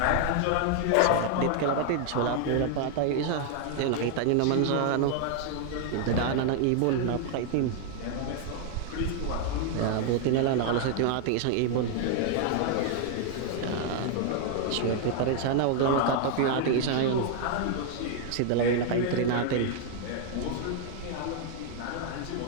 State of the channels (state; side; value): different; both; correlation 0.00